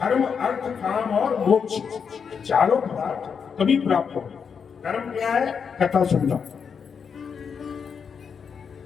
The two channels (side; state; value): right; quieter; 6.4 dB